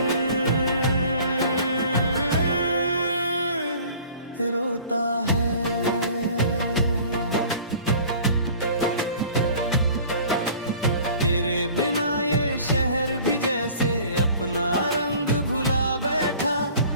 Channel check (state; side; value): inverted; both; correlation -0.48